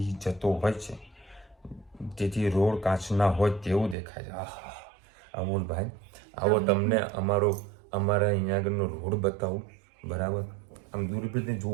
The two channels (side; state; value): left; drops out; at 4.0 s